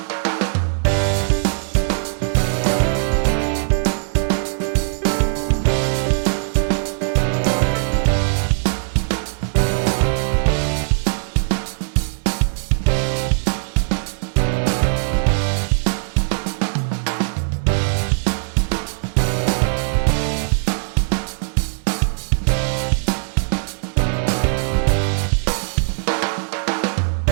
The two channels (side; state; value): left; silent; digital silence